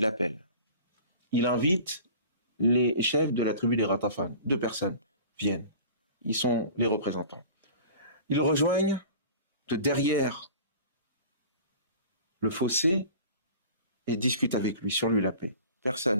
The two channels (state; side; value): inverted; both; correlation -0.42